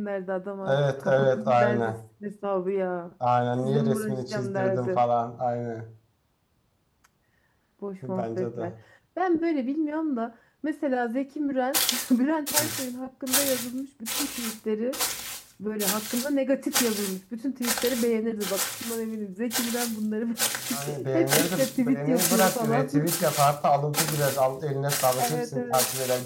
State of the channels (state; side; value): identical; both; correlation 1.00